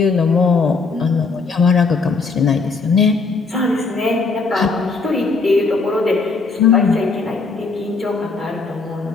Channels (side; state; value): right; quieter; 4.2 dB